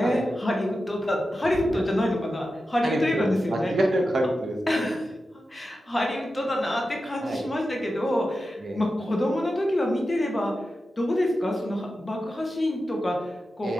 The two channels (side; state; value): both; normal; correlation 0.91